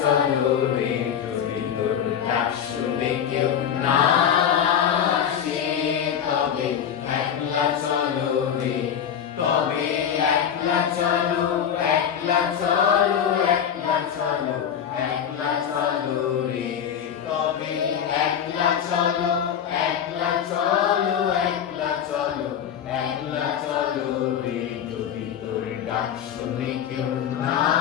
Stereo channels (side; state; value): right; quieter; 8.7 dB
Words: চলো রে, যদি তোর ডাক শুনে কেউ না আসে তবে একলা চলো রে, তবে একলা চলো, একলা চলো, একলা চলো, একলা চলো রে, তবে একলা চলো, একলা চলো, একলা চলো, একলা চলো রে, যদি তোর ডাক শুনে কেউ না